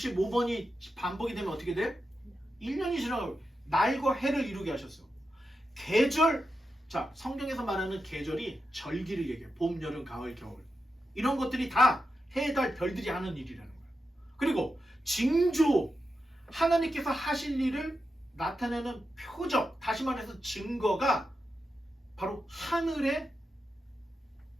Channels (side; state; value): both; normal; correlation 0.88